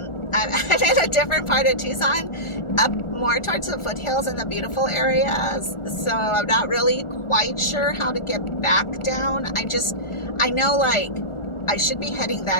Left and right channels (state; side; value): late; right; 1.4 ms